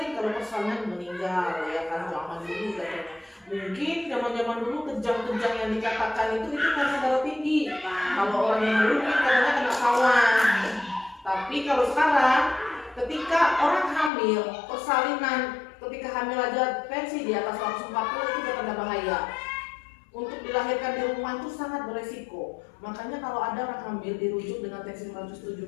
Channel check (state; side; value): drops out; right; at 14.1 s